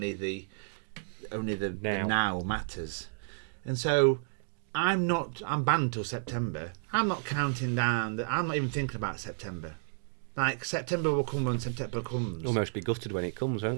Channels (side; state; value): left; silent; digital silence